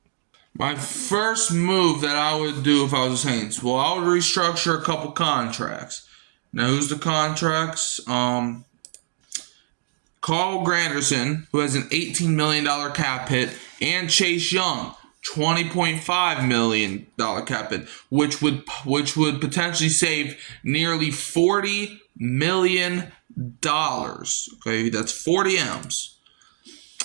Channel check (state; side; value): silent; left; digital silence